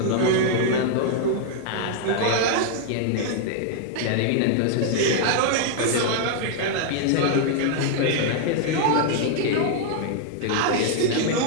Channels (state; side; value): different; both; correlation 0.00